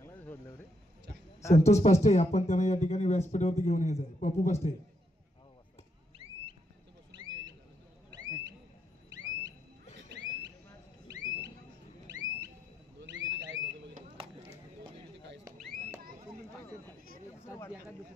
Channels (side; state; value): both; normal; correlation 0.78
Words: संतोष पास्टे, आपण त्यांना या ठिकाणी व्यासपीठावरती घेऊन यायचं आहे. पप्पू पास्टे.